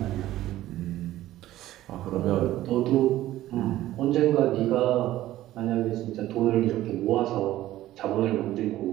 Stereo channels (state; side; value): quieter; left; 14.7 dB